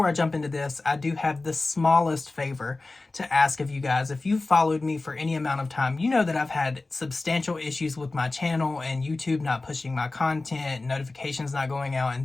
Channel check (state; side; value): quieter; right; 3.3 dB